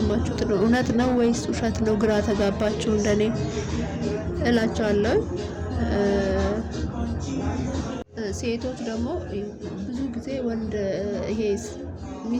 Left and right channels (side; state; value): both; identical; correlation 1.00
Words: እውነት ነው ወይስ ውሸት ነው? ግራ ተጋባችሁ እንደኔ እላችኋለሁ። ሴቶች ደግሞ ብዙ ጊዜ ወንድ ይሄ